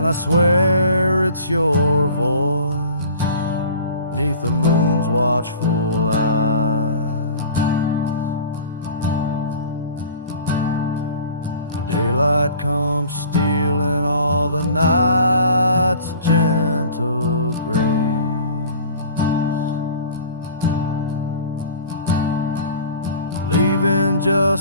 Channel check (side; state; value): both; inverted; correlation -0.44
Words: I swear it's your voice 'neath the moon's watchful eyes. The daylight comes stealing all the night's gentle grace, leaving